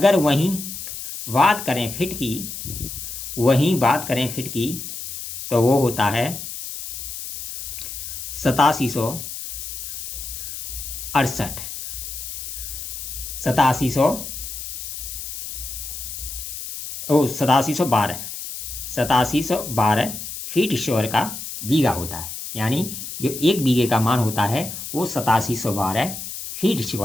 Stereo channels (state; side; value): noise; left; hiss, 8 dB below the sound